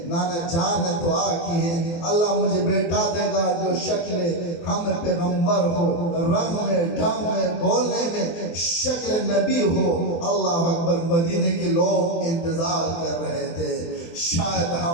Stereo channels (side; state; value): right; late; 24 ms